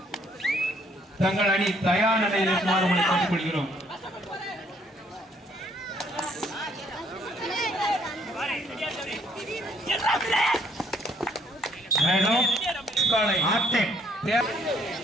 தங்கள் அணி தயார் நிலையில் இருக்குமாறு உங்களை கேட்டுக்கொள்கிறோம்.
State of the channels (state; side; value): normal; both; correlation 0.66